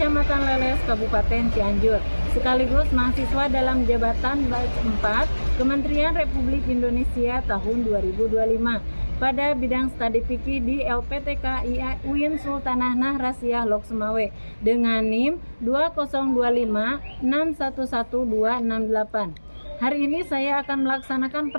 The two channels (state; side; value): inverted; both; correlation -1.00